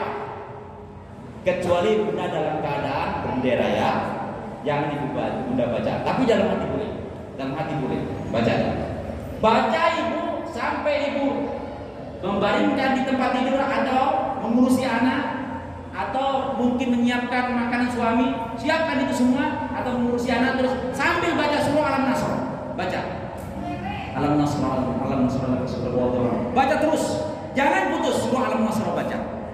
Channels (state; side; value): identical; both; correlation 1.00